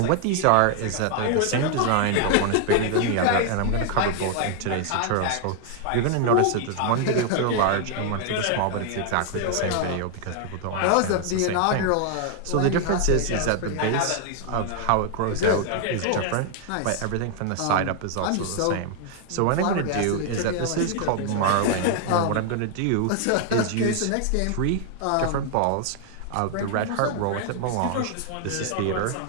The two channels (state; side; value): different; both; correlation 0.00